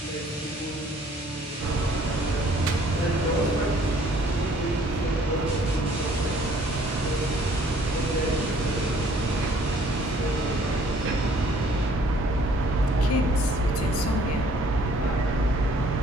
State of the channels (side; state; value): both; normal; correlation 0.59